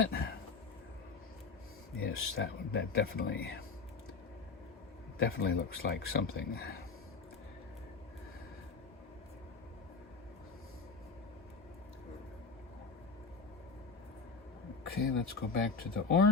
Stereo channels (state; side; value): quieter; right; 4.5 dB